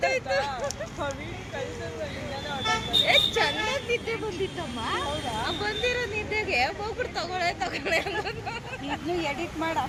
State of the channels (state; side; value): identical; both; correlation 1.00